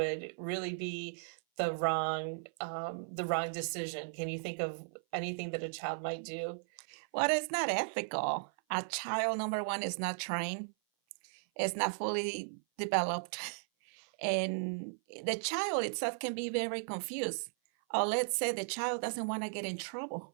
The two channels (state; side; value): silent; left; 54 dB below the other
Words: really be the wrong decision? Can you think of anything that a child might do? Well, it's not ethical. A child, number one, is not trained, is not fully developed, and the child itself can be very confused. Or let's say the child doesn't want to get in